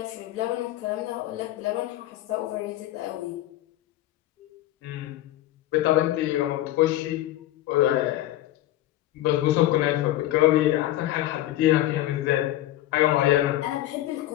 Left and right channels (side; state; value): right; quieter; 14.6 dB